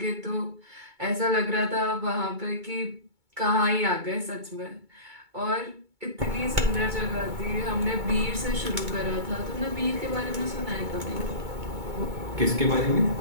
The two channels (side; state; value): left; late; 2.2 ms